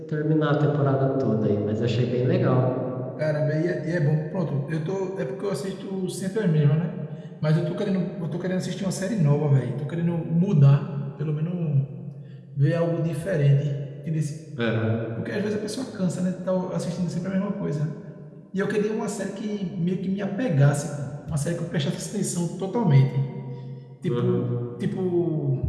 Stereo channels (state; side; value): identical; both; correlation 1.00